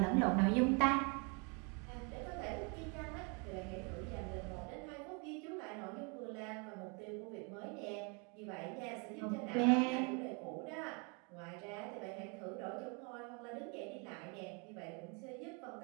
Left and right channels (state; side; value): quieter; left; 33.9 dB